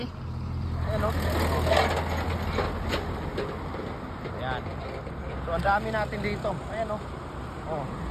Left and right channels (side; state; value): both; identical; correlation 1.00